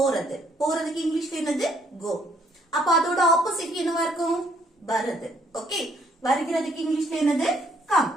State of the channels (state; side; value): normal; both; correlation 0.67